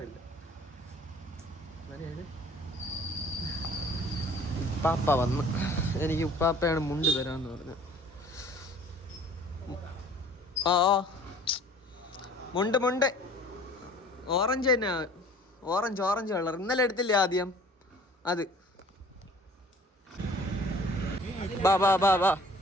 ഉപ്പാപ്പ വന്ന്, എനിക്ക് ഉപ്പാപ്പയാണ് മുണ്ട് തരാന്ന് പറഞ്ഞു. മുണ്ട് ഓറഞ്ച് തന്നെ, ഓറഞ്ച് കളർ. ഇന്നലെ എടുത്തില്ലേ ആദ്യം അത്. ബാ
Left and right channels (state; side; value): normal; both; correlation 0.50